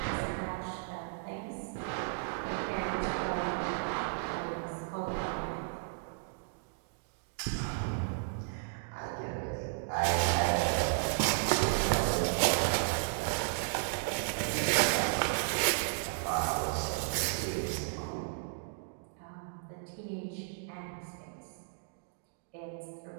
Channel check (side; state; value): left; silent; digital silence